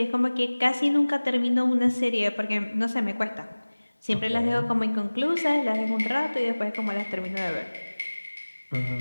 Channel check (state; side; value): inverted; both; correlation -1.00